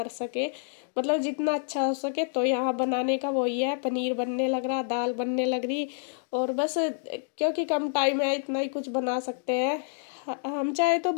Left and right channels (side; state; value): right; silent; 59 dB below the other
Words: सके, मतलब जितना अच्छा हो सके। तो यहाँ बनाने का वही है, पनीर बनने लग रहा, दाल बनने लग रही। और बस क्योंकि कम टाइम है इतना ही कुछ बना सकते हैं। हम चाहे तो